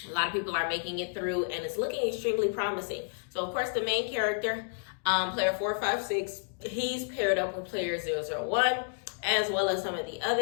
A lot of people are making it through, and it's looking extremely promising. So, of course, the main character, player 456, he's paired up with player 001, as well as some of the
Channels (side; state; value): right; silent; digital silence